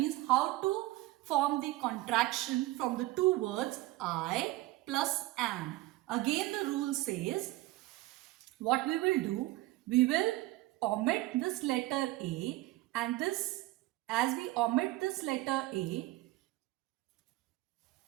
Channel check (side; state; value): left; quieter; 18.2 dB